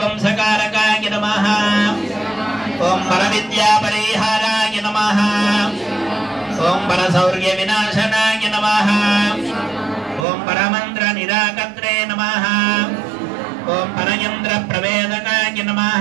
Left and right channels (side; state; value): left; drops out; at 10.2 s